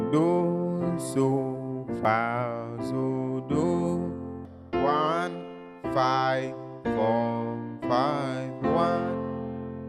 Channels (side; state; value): both; identical; correlation 1.00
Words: Do, so, fa, so, do. 1, 5, 4, 5, 1.